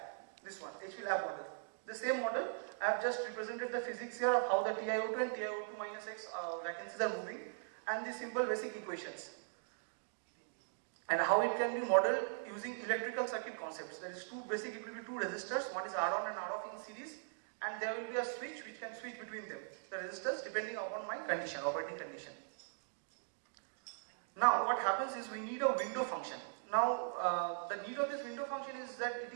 this one, HP lab model. The same model, I have just represented the physics here of how the TiO2 and TiO2 minus X vacancies are moving, and the simple basic equations, and how it can be modeled using electrical circuit concepts. There is it will be two resistors, one is R on and R off in series, and there will be a switch which can switch between them, the resistors, depending upon my condition, operating condition. Now what happens is, we need a window function. Now the need of this window function is that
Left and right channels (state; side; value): silent; left; digital silence